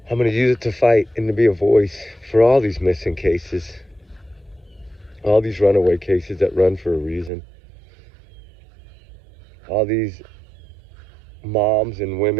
I'm going to use it to fight and to be a voice for all these missing cases. All these runaway cases that run for a reason. All these moms and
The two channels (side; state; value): left; drops out; at 7.3 s